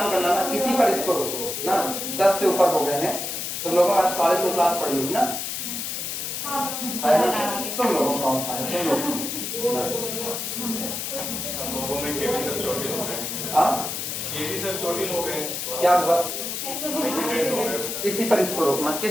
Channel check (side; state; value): left; noise; hiss, 4 dB below the sound